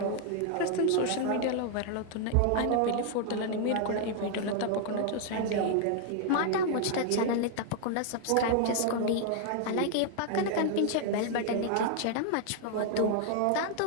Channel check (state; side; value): different; both; correlation 0.00